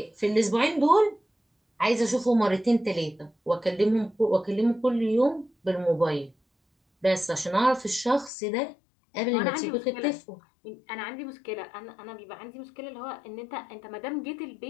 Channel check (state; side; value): drops out; right; at 8.3 s